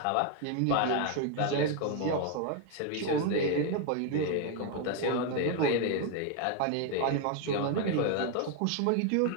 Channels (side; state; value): both; different; correlation 0.01